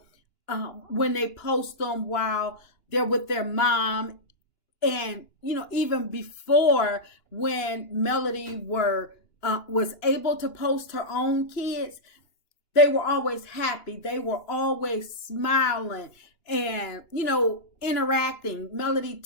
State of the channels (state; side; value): late; right; 2.9 ms